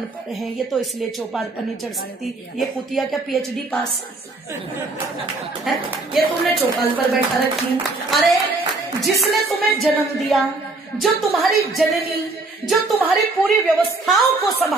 हैं, ये तो इसलिए चौपाल पर नहीं चढ़ सकती, ये कुतिया क्या पीएचडी पास है, ये तुमने चौपाल पर बैठा रखी। अरे जिसने तुम्हें जन्म दिया, जो तुम्हारी जननी, जो तुम्हारी पूरी व्यवस्थाओं को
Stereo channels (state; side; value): quieter; left; 3.3 dB